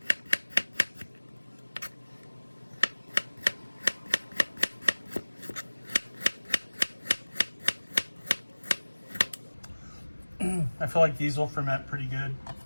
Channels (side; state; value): both; inverted; correlation -1.00